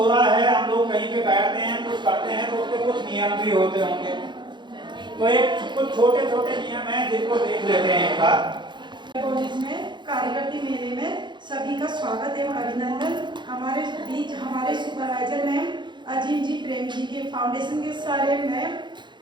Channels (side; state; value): left; late; 0.22 ms